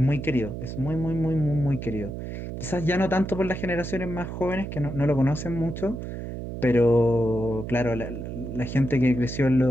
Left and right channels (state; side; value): noise; right; hum, 7 dB below the sound